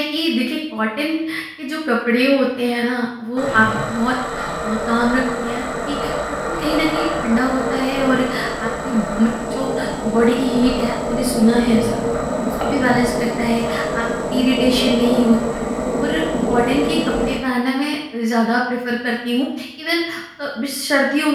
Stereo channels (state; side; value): identical; both; correlation 1.00